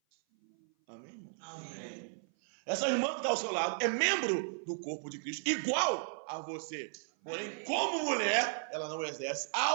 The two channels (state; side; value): silent; left; 54 dB below the other